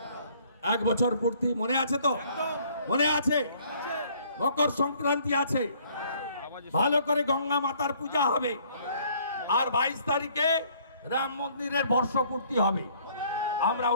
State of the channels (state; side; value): inverted; both; correlation -0.60